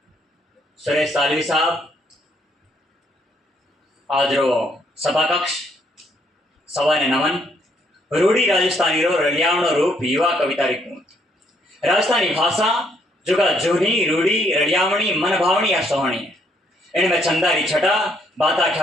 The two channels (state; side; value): normal; both; correlation 0.70